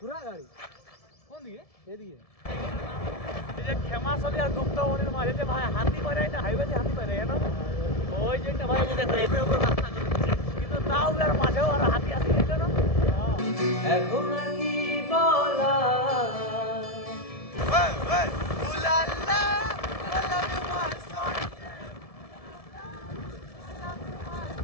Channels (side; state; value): right; late; 1.7 ms